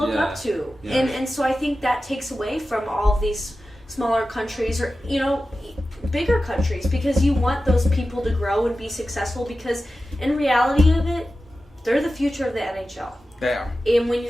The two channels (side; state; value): both; normal; correlation 0.93